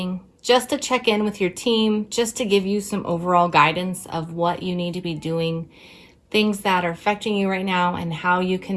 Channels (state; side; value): identical; both; correlation 1.00